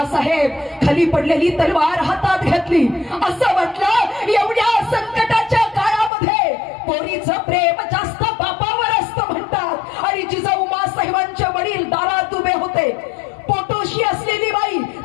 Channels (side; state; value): right; drops out; at 6.1 s